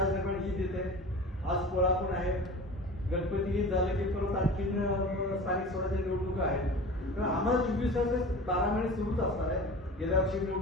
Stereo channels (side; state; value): both; normal; correlation 0.37